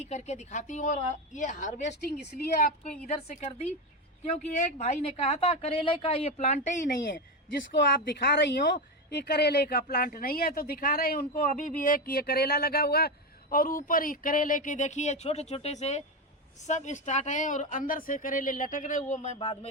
करके दिखाती हूँ। और ये हार्वेस्टिंग इसलिए आपको इधर से कर दी क्योंकि एक भाई ने कहा था करेले का ये प्लांट ही नहीं है, जिसको आप दिखा रही हो ये करेले का प्लांट नहीं है। तो दिखा रहे हैं उनको, अभी भी एक ये करेला लगा हुआ और ऊपर ही करेले के देखिए छोटे छोटे से सब स्टार्ट है और अंदर से करेले लटक रहे। वो मैं बाद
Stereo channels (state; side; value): normal; both; correlation 0.14